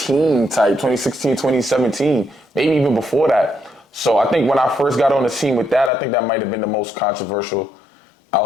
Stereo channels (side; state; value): right; drops out; at 5.9 s